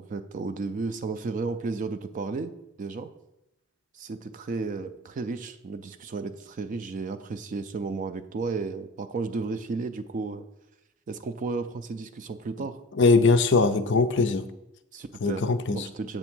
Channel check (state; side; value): normal; both; correlation 0.37